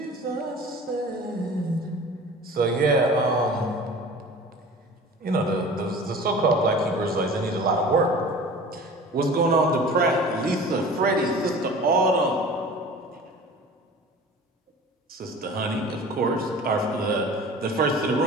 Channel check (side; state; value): both; normal; correlation 0.41